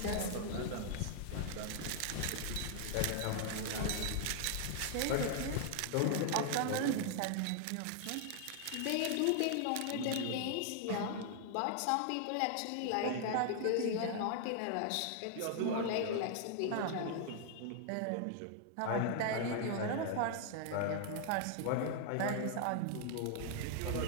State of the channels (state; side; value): different; both; correlation 0.00